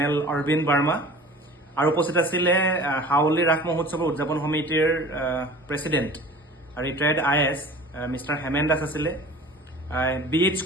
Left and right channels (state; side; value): normal; both; correlation 0.42